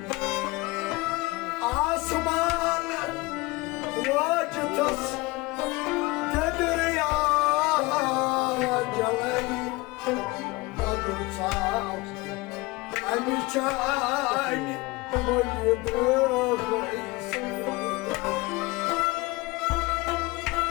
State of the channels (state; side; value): quieter; right; 22.9 dB